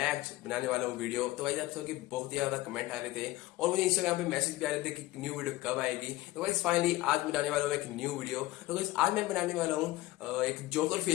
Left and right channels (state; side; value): quieter; right; 18.0 dB